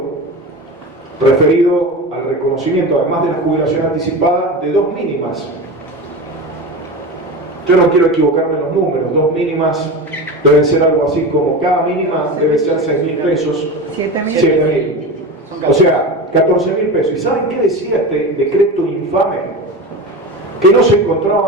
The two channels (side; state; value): both; normal; correlation 0.26